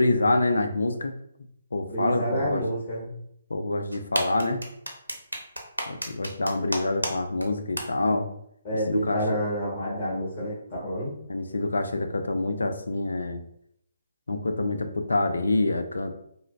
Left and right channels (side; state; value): both; inverted; correlation -0.85